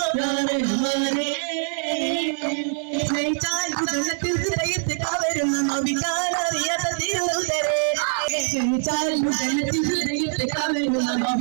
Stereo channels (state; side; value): silent; left; 63 dB below the other